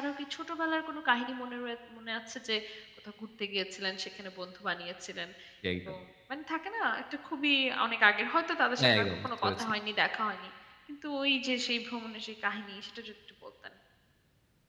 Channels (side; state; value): both; identical; correlation 1.00